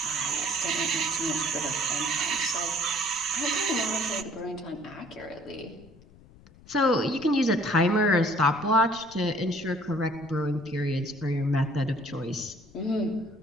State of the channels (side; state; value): left; noise; rumble, 24 dB below the sound